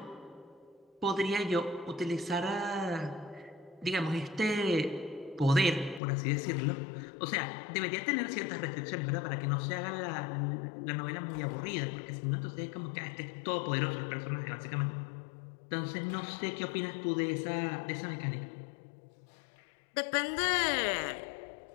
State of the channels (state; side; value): drops out; right; at 6.0 s